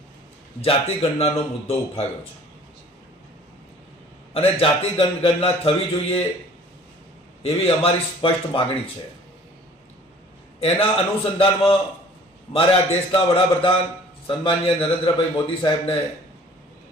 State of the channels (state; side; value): normal; both; correlation 0.51